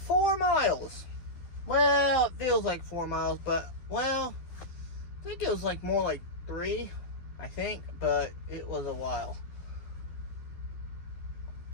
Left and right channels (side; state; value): right; late; 12 ms